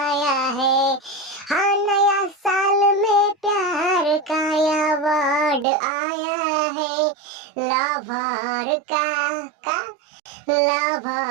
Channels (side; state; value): left; drops out; at 5.7 s